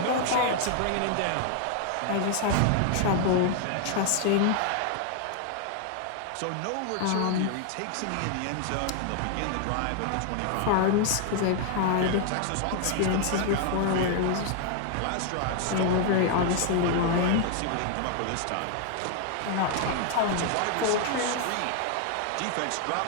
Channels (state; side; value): different; both; correlation 0.00